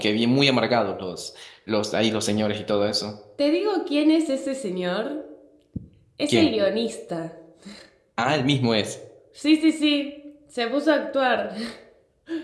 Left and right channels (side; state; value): both; identical; correlation 1.00